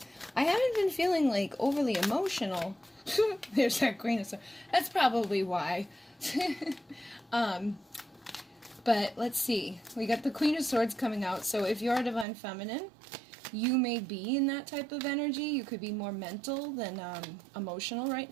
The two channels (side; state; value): left; drops out; at 12.2 s